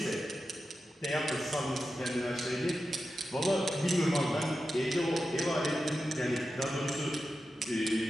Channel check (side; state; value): both; normal; correlation 0.91